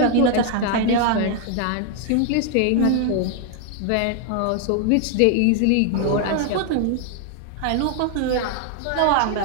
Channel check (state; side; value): different; both; correlation 0.00